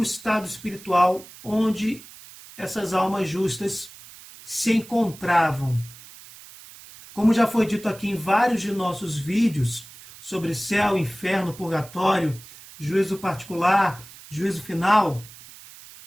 estado espiritual onde essas almas justas se encontravam. Como já foi dito aqui em vários de nossos vídeos sobre céu, inferno, purgatório, juízo particular, juízo final,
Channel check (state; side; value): noise; right; hiss, 19 dB below the sound